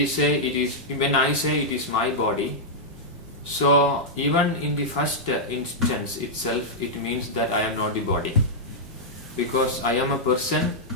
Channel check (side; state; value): both; normal; correlation -0.07